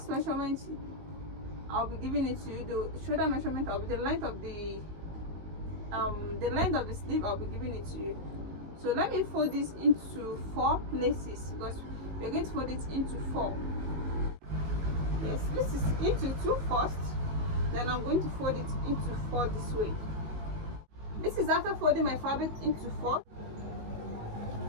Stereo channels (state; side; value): late; left; 19 ms